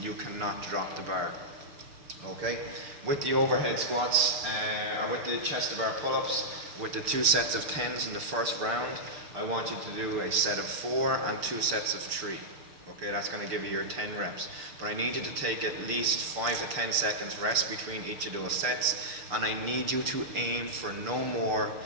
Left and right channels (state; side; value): late; left; 6.8 ms